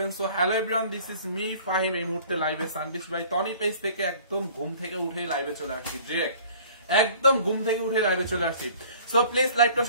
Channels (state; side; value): inverted; both; correlation -0.50